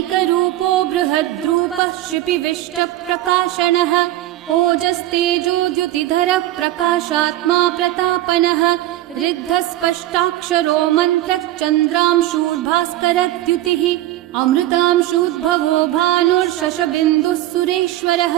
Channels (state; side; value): quieter; left; 15.0 dB